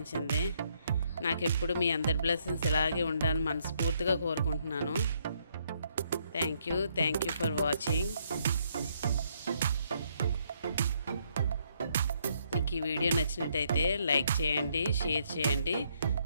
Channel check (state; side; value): inverted; both; correlation -0.72